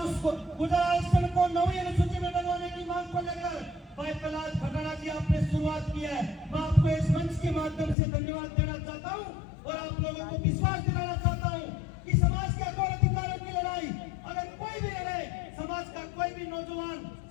उसको गुजरात आरक्षण को 9वीं अनुसूची में डलवाने की मांग को लेकर भाई प्रहलाद खटाड़ा जी आपने शुरुआत की है। मैं आपको इस मंच के माध्यम से धन्यवाद देना चाहता हूँ और आप लोगों को विश्वास दिलाना चाहता हूँ कि समाज के हक और अधिकारों की लड़ाई अगर कोई भी लड़े, समाज का कोई भी नौजवान,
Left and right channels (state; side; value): drops out; right; at 8.0 s